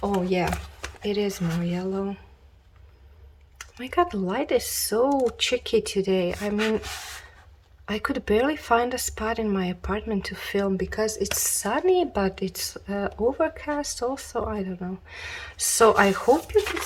Oh yeah, it is more yellow. My god, the light is so tricky today. I mean, I could barely find a spot in my apartment to film because it's sunny, but it's overcast also. I don't know. So I hope you can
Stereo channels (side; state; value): both; identical; correlation 1.00